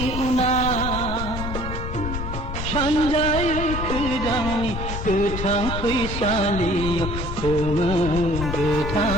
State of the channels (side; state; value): left; noise; rumble, 5 dB below the sound